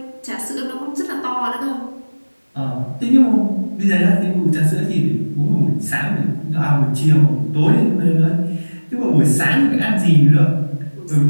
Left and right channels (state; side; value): inverted; both; correlation -1.00